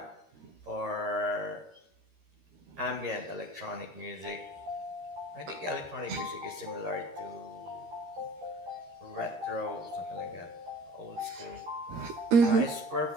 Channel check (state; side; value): late; left; 13 ms